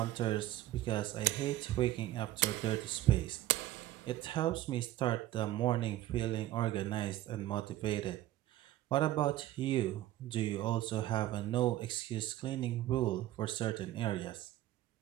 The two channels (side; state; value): left; quieter; 14.7 dB